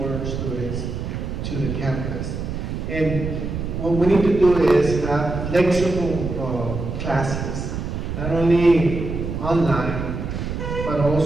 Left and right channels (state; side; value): noise; right; rumble, 5 dB below the sound